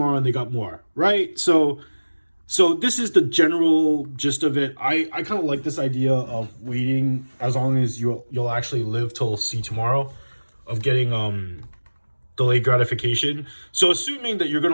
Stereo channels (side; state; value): both; inverted; correlation -1.00